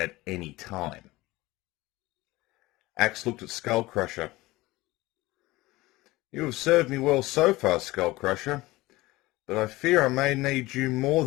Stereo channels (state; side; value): quieter; right; 19.7 dB